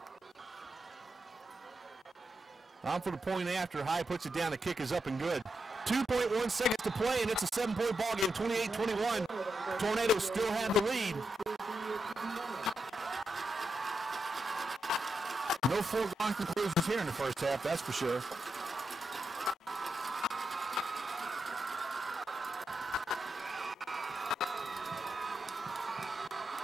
On for the point after. High puts it down. The kick is up and good. 2.1 seconds to play, and it's a 7-point ball game, 28-21. Tornadoes still have the lead. No foregone conclusions here in the first half, that's for sure.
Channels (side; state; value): both; normal; correlation 0.86